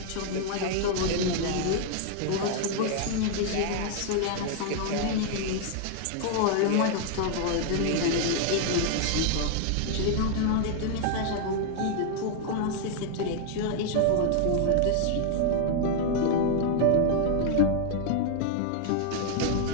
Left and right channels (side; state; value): both; different; correlation 0.00